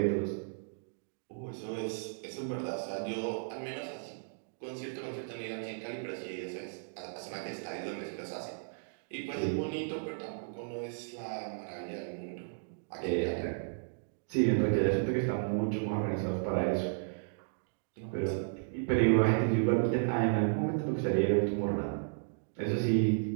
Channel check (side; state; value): left; silent; digital silence